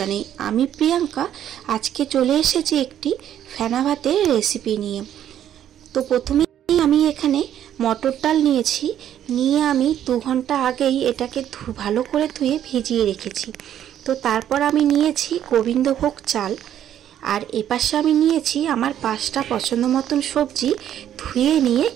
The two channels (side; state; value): left; quieter; 10.6 dB